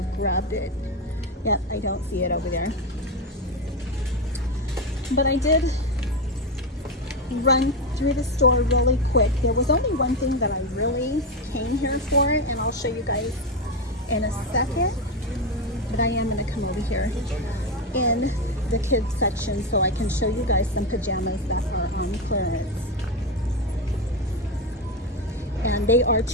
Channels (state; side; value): normal; both; correlation 0.12